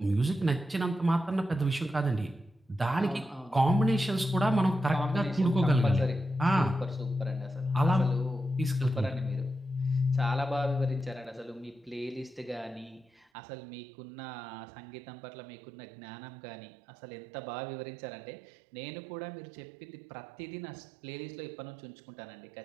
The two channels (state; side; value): drops out; left; at 13.2 s